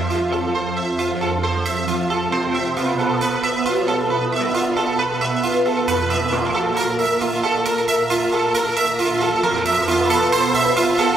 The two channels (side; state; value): both; normal; correlation 0.79